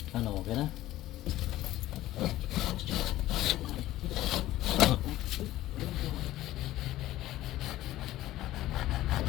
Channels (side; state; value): right; quieter; 15.2 dB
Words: Ano, okay na?